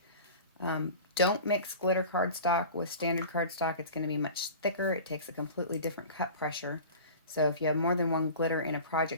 Don't mix glitter cardstock with standard cardstock. It's going to be much thicker. It takes a completely different cut pressure. So if you have more than one glitter in a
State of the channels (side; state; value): both; inverted; correlation -0.37